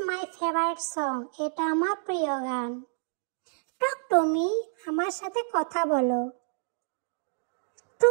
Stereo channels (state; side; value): silent; left; digital silence